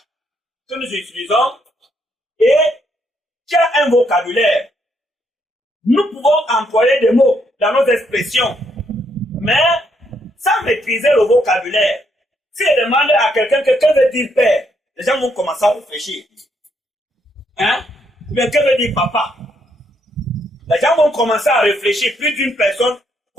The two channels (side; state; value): both; normal; correlation 0.74